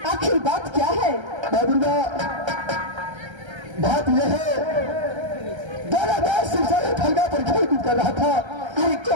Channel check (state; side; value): late; left; 1.3 ms